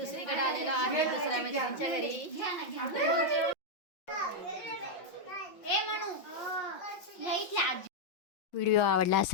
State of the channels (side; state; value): right; late; 5.7 ms